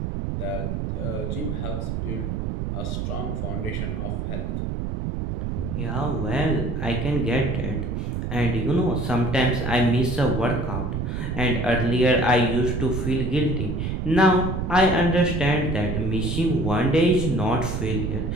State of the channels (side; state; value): right; noise; rumble, 3 dB below the sound